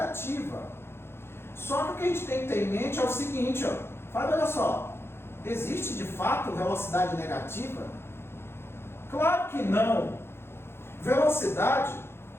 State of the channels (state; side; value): late; right; 0.12 ms